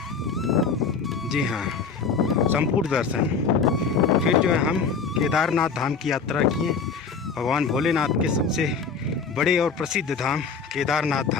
जी हाँ, संपूर्ण दर्शन। फिर जो है हम केदारनाथ धाम की यात्रा किए। भगवान भोलेनाथ के सबसे बड़े और प्रसिद्ध धाम केदारनाथ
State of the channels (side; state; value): right; quieter; 5.4 dB